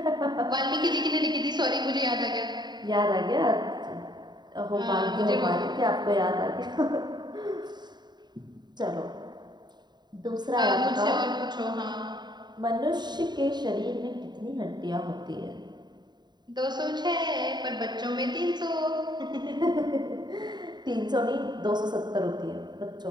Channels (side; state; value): left; late; 0.21 ms